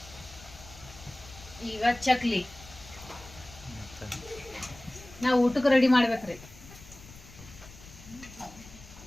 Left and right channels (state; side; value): noise; left; rumble, 19 dB below the sound